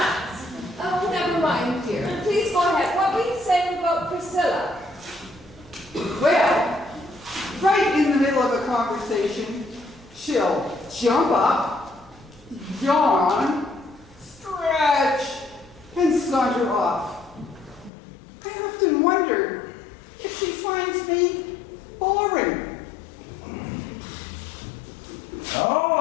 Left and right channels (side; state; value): right; drops out; at 17.9 s